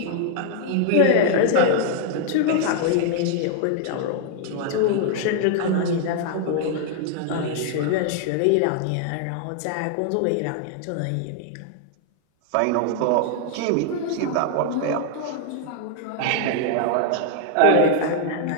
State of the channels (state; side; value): different; both; correlation 0.00